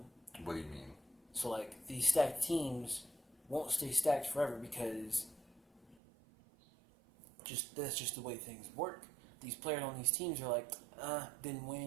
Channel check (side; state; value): left; drops out; at 6.0 s